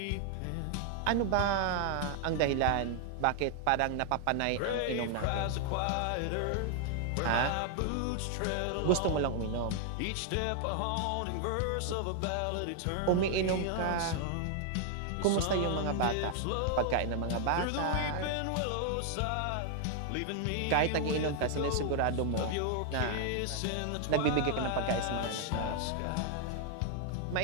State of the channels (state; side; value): different; both; correlation 0.00